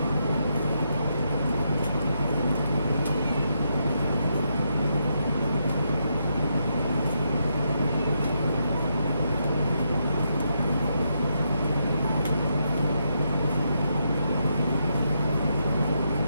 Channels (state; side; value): inverted; both; correlation -0.80